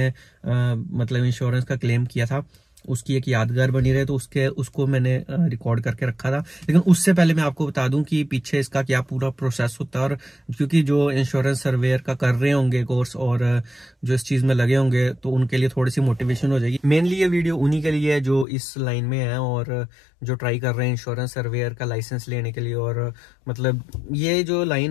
मतलब इंश्योरेंस का क्लेम किया था उसकी एक यादगार बनी रहे, तो उसको मैंने रिकॉर्ड करके रखा था। लेकिन उससे पहले मैं आपको बता दूं कि पीछे इसका क्या पूरा प्रोसेस होता है, और क्योंकि जो इंश्योरेंस सर्वेयर का कर रहे होंगे कोर्स और जो इस चीज में लगे होंगे तो उनके लिए थोड़ी सी मोटिवेशन हो जाएगी। मेनली ये वीडियो उन्हीं के लिए है जो इस लाइन में है और जो ट्राई कर रहे हैं इंश्योरेंस सर्वेयर का लाइसेंस लेने के लिए। और मतलब ये जो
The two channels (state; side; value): drops out; right; at 18.4 s